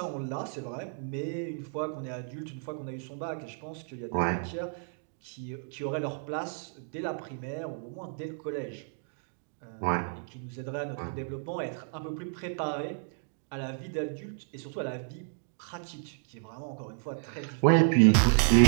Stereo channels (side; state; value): left; silent; digital silence